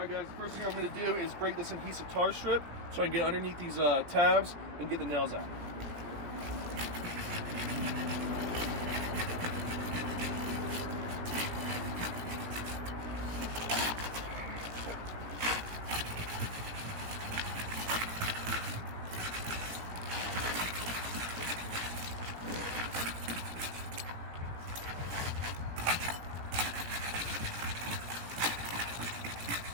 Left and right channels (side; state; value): left; late; 17 ms